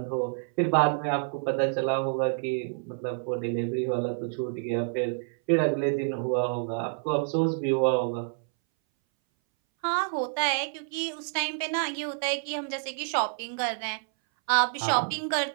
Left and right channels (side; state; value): left; silent; 59 dB below the other